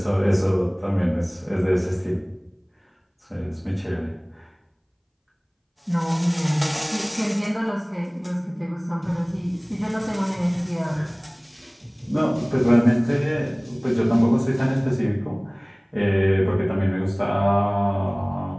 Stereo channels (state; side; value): identical; both; correlation 1.00